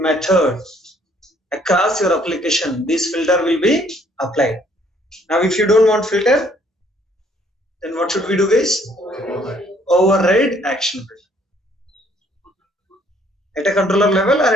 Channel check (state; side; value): normal; both; correlation 0.63